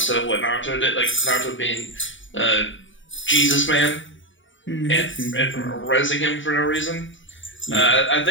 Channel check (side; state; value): right; late; 0.56 ms